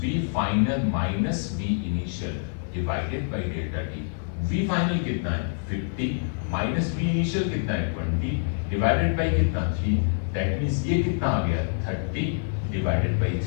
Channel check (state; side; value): silent; right; digital silence